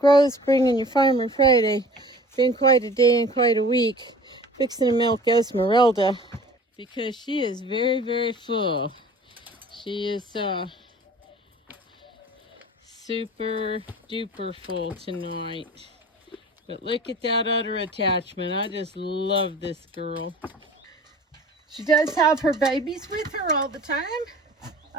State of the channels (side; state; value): both; normal; correlation 0.45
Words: bringing you Farmer Friday. Been quite a day and quite a week fixing to milk Esmeralda because she is very, very full. She is super duper full tonight. But look at that udder attachment. I just love this girl. She does have her babies with her all the time.